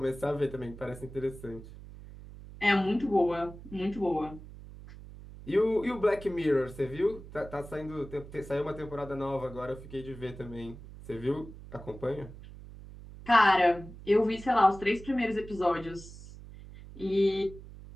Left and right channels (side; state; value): right; noise; hum, 16 dB below the sound